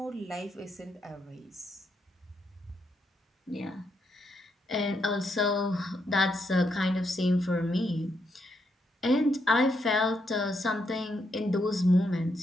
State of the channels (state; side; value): normal; both; correlation 0.79